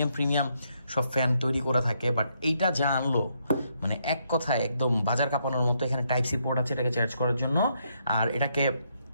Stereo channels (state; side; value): inverted; both; correlation -0.76